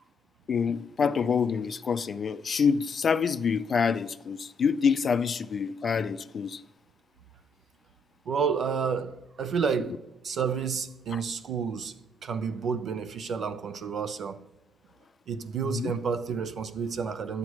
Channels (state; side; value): normal; both; correlation 0.70